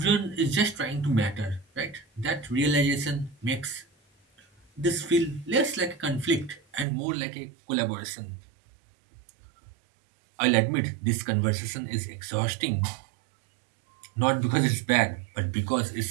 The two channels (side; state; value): left; drops out; at 6.9 s